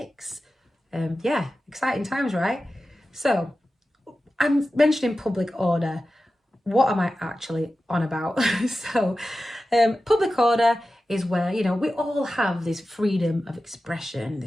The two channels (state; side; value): normal; both; correlation 0.93